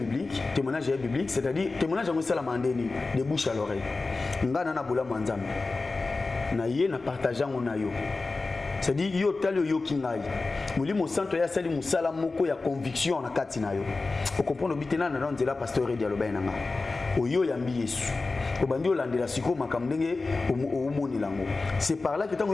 biblique, c'est-à-dire témoignage on sala mandeni de bouche à l'oreille. Ngana na bola manzambe. Na ye na partageant on a yo. C'est-à-dire yo talo yo kingai. Molimo santo ya sali musala moko ya conviction na kati na yo. O comprendre bitena na nzela pasteur dialogue na nga. O yo yambi Yesu. obandi olandela siko makambo ndenge omoni lango. C'est par là que tant que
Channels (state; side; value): quieter; right; 3.6 dB